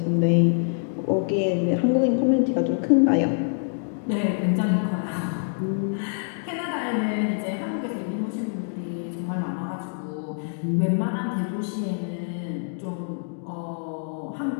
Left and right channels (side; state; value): right; silent; digital silence